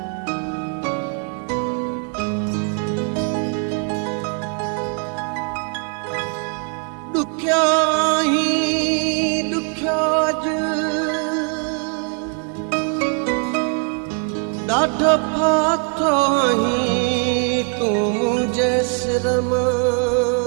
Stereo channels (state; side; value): quieter; left; 39.5 dB